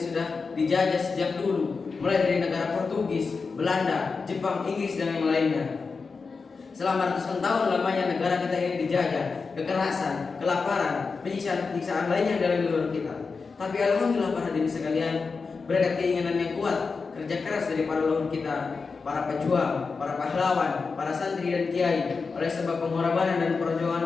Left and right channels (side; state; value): right; quieter; 4.7 dB